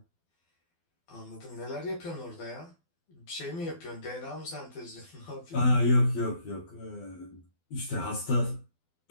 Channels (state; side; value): late; right; 12 ms